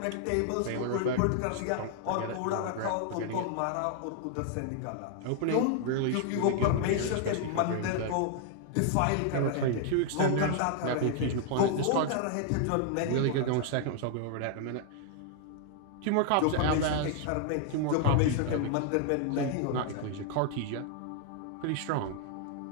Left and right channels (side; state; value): both; different; correlation 0.00